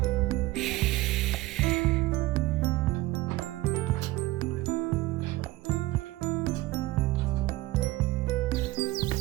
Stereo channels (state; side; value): quieter; left; 18.3 dB